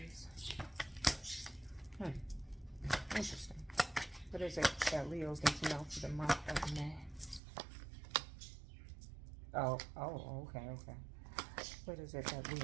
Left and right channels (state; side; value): drops out; left; at 7.4 s